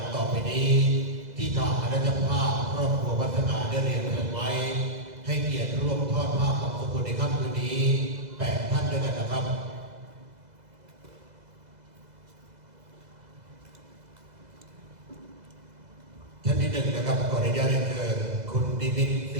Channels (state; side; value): late; left; 2.0 ms